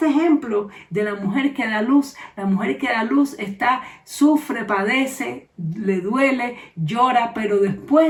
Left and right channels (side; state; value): both; identical; correlation 1.00